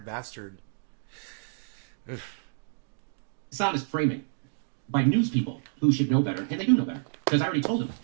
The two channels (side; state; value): left; silent; digital silence